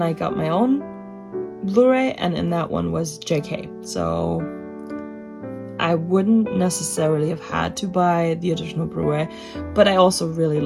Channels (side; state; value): both; identical; correlation 1.00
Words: I got my own Blu-ray, and in that one was JK. So I wouldn't necessarily have had to buy the additional Blu-ray, but I also really